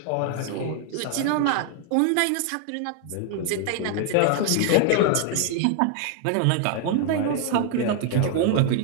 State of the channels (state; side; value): different; both; correlation 0.00